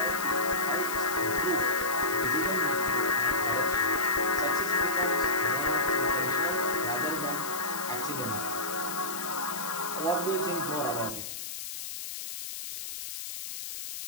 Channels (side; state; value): left; noise; hiss, 7 dB below the sound